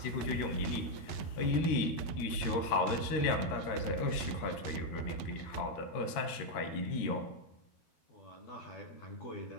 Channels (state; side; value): late; right; 13 ms